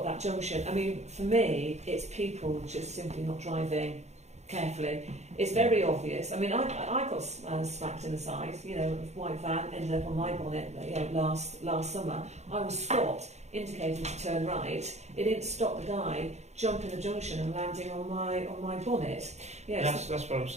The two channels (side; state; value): left; late; 0.32 ms